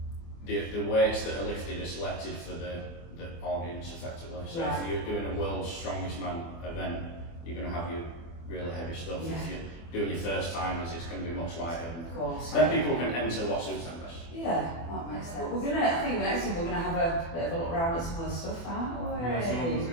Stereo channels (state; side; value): late; right; 24 ms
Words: the weights that are lifted are selected for the audience effectively. So if you're doing a World's Strongest Man event, you're going to have your really heavy stuff. If you're doing your first timers, it's going to be much lighter. Of course. Then people can enter what suits them best. Yeah, that makes sense. I think the next thing we're gonna have a bit of a look around at some of the stuff, aren't we? Yeah, someone's